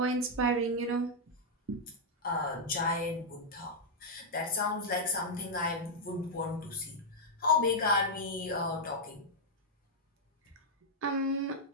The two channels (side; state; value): both; normal; correlation -0.05